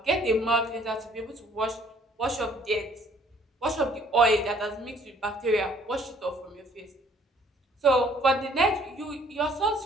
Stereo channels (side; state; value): both; normal; correlation 0.59